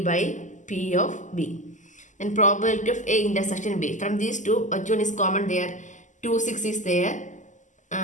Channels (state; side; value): late; right; 0.36 ms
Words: P of B. And probability of A intersection B. From these two, which one is common there? 2 6 is there.